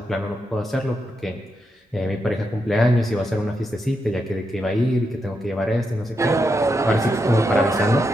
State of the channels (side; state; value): both; normal; correlation 0.84